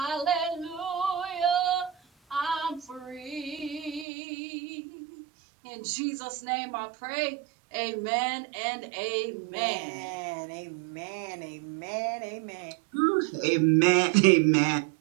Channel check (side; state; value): left; drops out; at 4.0 s